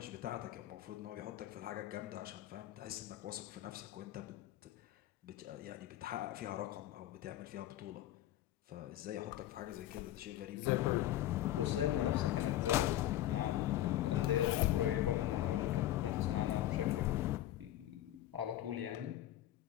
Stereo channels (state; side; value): quieter; right; 13.5 dB